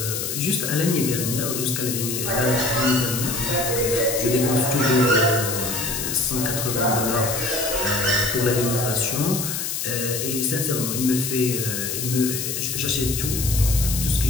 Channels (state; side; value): noise; left; hiss, 3 dB below the sound